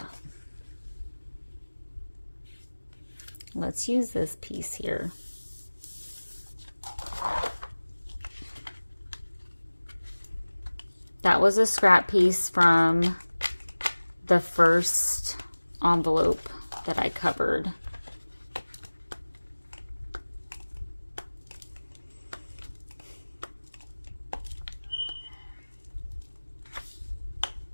Let's use this piece here. That was a scrap piece from the first envelope that I covered.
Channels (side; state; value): both; inverted; correlation -1.00